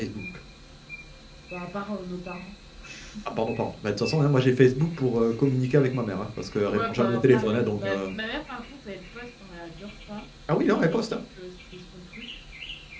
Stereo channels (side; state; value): both; identical; correlation 1.00